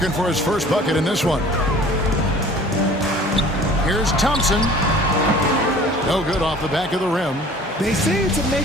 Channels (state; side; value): normal; both; correlation 0.48